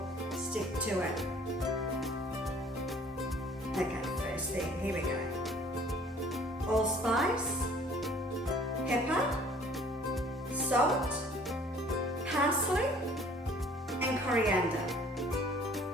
stick to it. Okay, first thing, here we go. Allspice, pepper, salt, parsley and coriander.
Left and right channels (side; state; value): both; normal; correlation 0.54